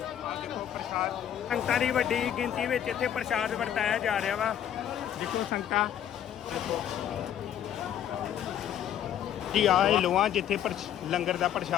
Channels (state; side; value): quieter; right; 10.3 dB